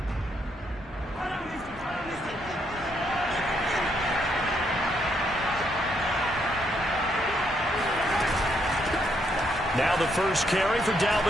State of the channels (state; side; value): normal; both; correlation 0.75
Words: Now the first carry for